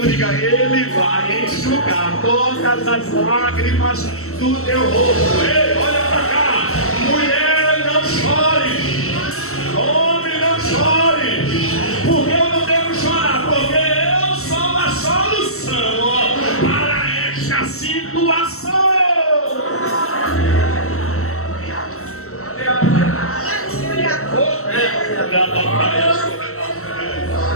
diga: ele vai enxugar todas as lágrimas do teu rosto. Ei, olha para cá, mulher, não chore, homem, não chore, porque eu não devo chorar, porque eu sou a solução para esta situação.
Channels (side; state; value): right; late; 0.63 ms